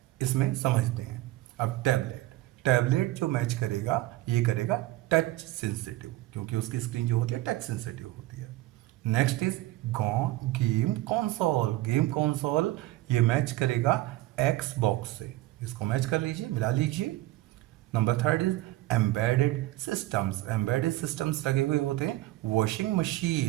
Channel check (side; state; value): left; quieter; 17.2 dB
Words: इसमें समझते हैं. अब टैबलेट जो मैच करेगा ये करेगा टच सेंसिटिव, क्योंकि उसकी स्क्रीन जो होती है टच सेंसिटिव होती है. नेक्स्ट इज गेम कंसोल ये मैच करेगा Xbox से. इसको मैच कर लीजिए, मिला लीजिए. नंबर 3 इज एम्बेडेड सिस्टम्स लगे हुए होते हैं वॉशिंग